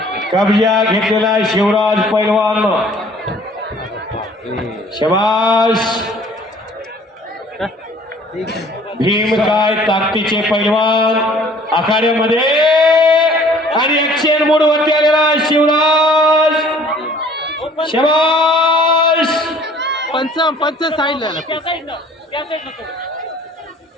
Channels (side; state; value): both; normal; correlation 0.54